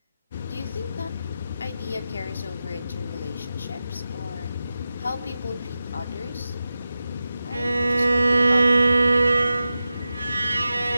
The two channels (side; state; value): both; inverted; correlation -0.92